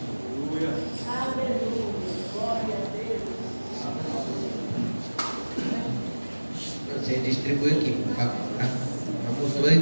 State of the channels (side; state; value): both; inverted; correlation -1.00